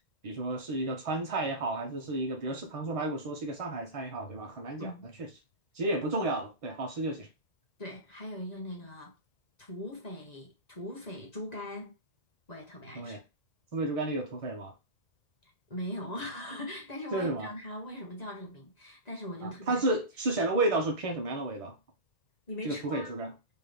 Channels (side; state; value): right; late; 1.9 ms